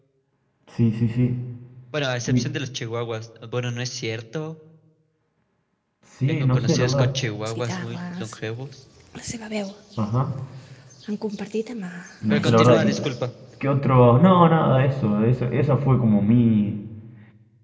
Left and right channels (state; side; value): identical; both; correlation 1.00